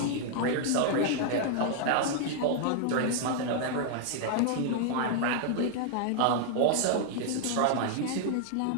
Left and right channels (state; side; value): different; both; correlation 0.00